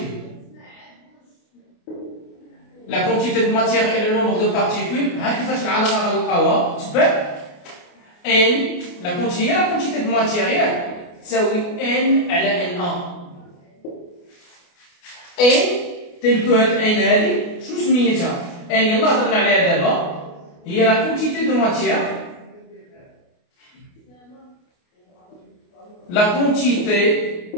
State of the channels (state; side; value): late; right; 28 ms